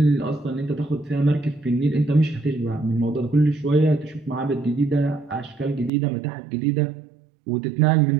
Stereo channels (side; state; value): left; drops out; at 5.9 s